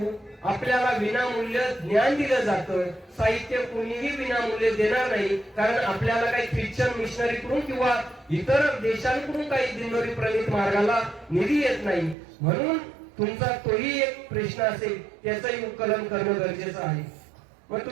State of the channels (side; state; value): left; drops out; at 12.2 s